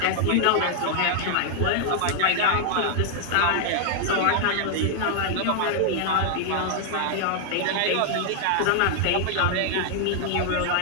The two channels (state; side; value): different; both; correlation -0.01